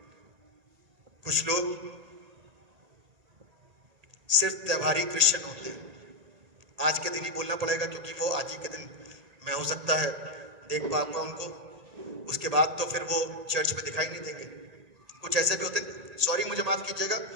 कुछ लोग सिर्फ त्योहारी क्रिश्चियन होते हैं। आज के दिन ही बोलना पड़ेगा क्योंकि वो आज ही के दिन मैं हो सकता है देख पाऊंगा उनको, उसके बाद तो फिर वो चर्च में दिखाई नहीं देंगे। कुछ ऐसे भी होते हैं, सॉरी मुझे माफ कीजिएगा,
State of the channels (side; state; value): left; late; 1.8 ms